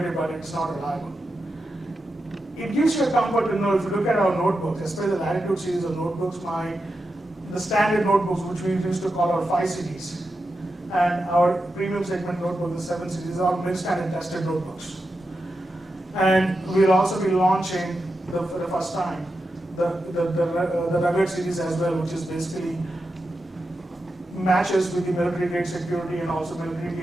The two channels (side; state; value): both; normal; correlation 0.89